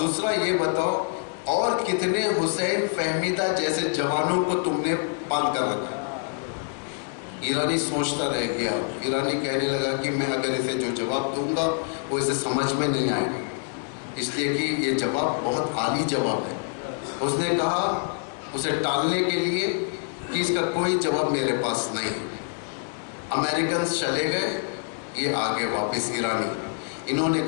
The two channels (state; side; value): silent; right; 58 dB below the other